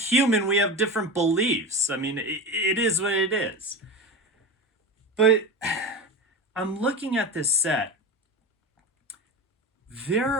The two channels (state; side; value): normal; both; correlation 0.24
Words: We have different beliefs. I mean, it is what it is. But I'm looking at this set. There